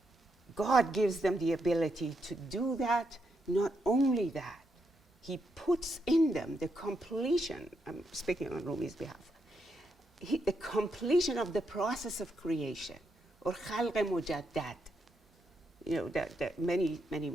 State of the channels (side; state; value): both; normal; correlation 0.81